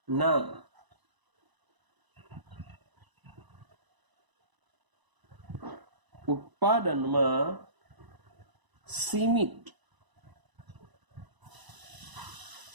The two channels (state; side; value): late; left; 1.0 ms